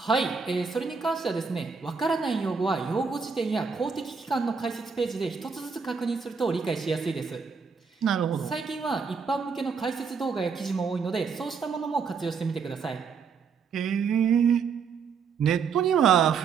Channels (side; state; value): left; quieter; 5.7 dB